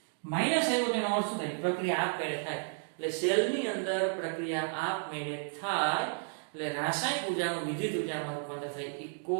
માઈનસ આવ્યો તેનો અર્થ શું થાય પ્રક્રિયા આપમેળે થાય એટલે સેલની અંદર પ્રક્રિયા આપમેળે થાય એટલે રાસાયણિક ઉર્જાનું વિદ્યુત ઉર્જામાં રૂપાંતર થાય. એ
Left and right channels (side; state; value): left; silent; 56 dB below the other